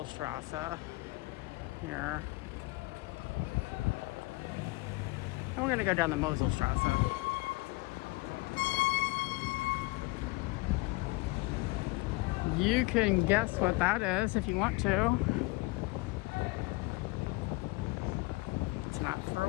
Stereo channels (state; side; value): quieter; right; 23.5 dB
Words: here. And we're gonna go down the Moselstr. You can guess what that is if you want to. It's not for